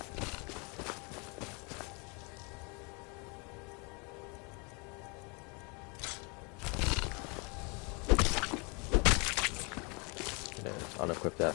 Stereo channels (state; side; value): quieter; right; 31.9 dB